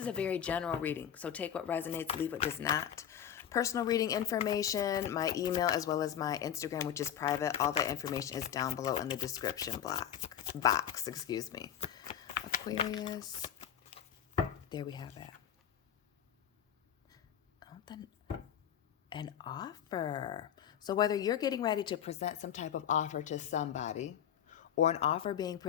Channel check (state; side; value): quieter; right; 9.7 dB